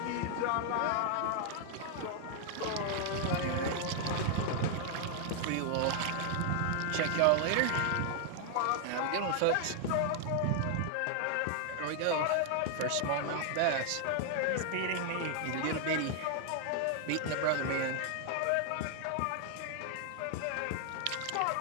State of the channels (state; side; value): different; both; correlation 0.00